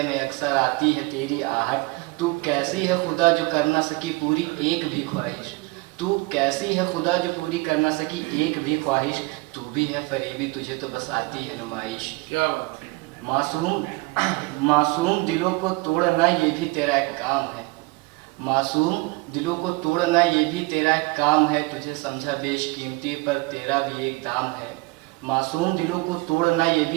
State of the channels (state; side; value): quieter; left; 24.7 dB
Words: में अक्सर आती है तेरी आहट। तू कैसी है खुदा जो कर ना सकी पूरी एक भी ख्वाहिश, तू कैसी है खुदा जो पूरी कर ना सकी एक भी ख्वाहिश, तू भी है फरेबी तुझे तो बस आती है नुमाइश। क्या बात है। मासूम दिलों को तोड़ना ये भी तेरा एक काम है, मासूम दिलों को तोड़ना ये भी तेरा एक काम है, तुझे समझा बेशकीमती पर तेरा भी एक दाम है। मासूम दिलों को तोड़ना ये